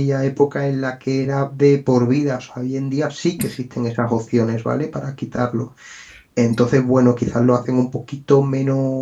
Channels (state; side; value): identical; both; correlation 1.00